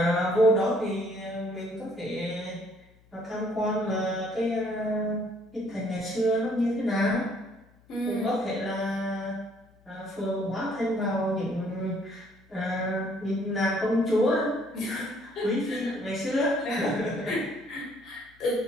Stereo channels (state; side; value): noise; left; hum, 29 dB below the sound